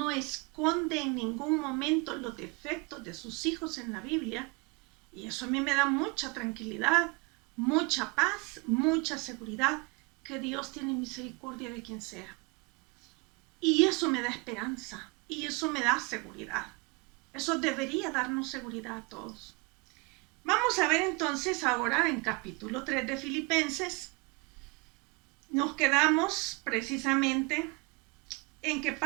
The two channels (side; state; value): left; quieter; 28.7 dB